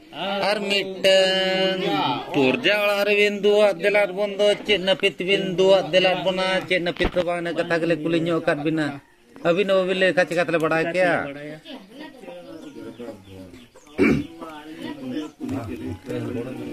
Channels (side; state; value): both; identical; correlation 1.00